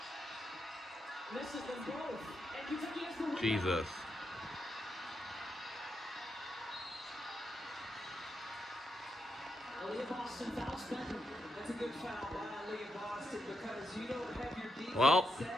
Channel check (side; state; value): both; normal; correlation 0.82